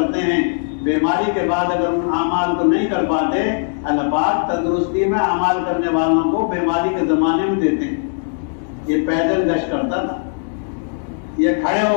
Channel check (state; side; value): silent; right; digital silence